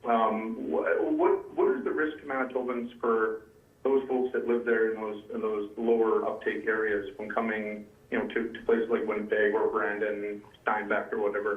What is the risk to Manitobans for those folks that live there in those lower uptake areas from coming, to places like Winnipeg or Brandon, Steinbach or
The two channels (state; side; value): identical; both; correlation 1.00